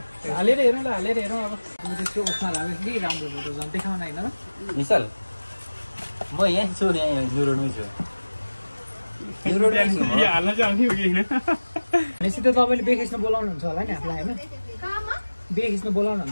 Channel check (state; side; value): inverted; both; correlation -1.00